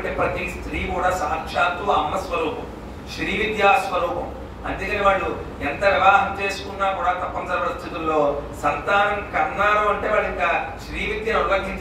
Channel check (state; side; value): identical; both; correlation 1.00